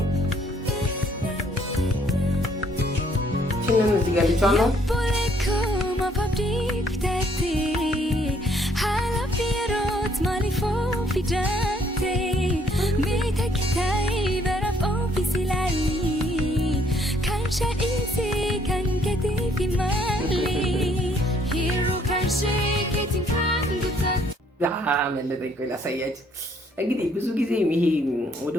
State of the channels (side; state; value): both; normal; correlation 0.66